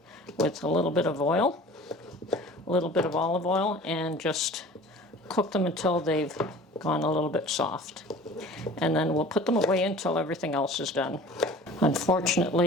with a little bit of oil, a little bit of olive oil, and just cook them until they've gone a little bit soft. And then we'll put them away until everything else is done.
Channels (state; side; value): normal; both; correlation 0.43